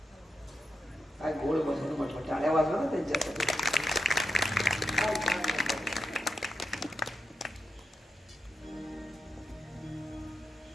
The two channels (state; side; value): normal; both; correlation 0.87